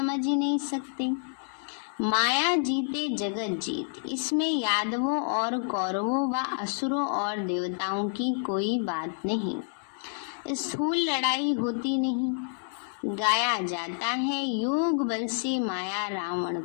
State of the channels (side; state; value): right; silent; 59 dB below the other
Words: ही नहीं सकते। माया जीते जगत जीत। इसमें यादवों और कौरवों व असुरों और देवताओं की कोई बात नहीं। स्थूल लड़ाई होती नहीं। गाया जाता है योग बल से माया रावण